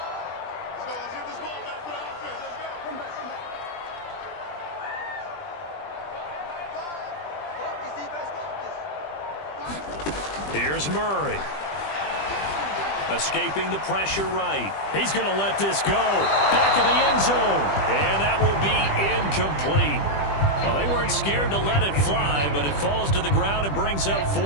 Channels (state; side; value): late; right; 20 ms